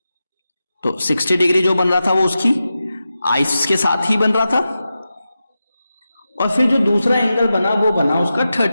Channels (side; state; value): both; inverted; correlation -0.92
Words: तो 60 डिग्री जो बन रहा था वो उसकी आइस के साथ ही बन रहा था। और फिर जो दूसरा एंगल बना वो बना उसका